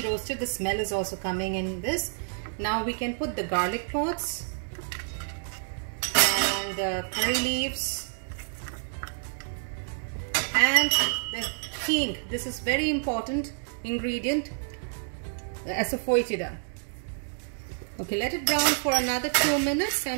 roasted. The smell is also coming in this. Now we can put the garlic pods and the curry leaves and the hing. This is very important ingredient, the asafoetida. Okay, let it brown for another 2 minutes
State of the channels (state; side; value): silent; left; digital silence